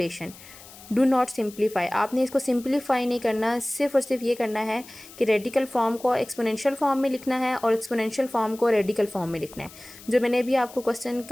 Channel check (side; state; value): left; noise; hiss, 19 dB below the sound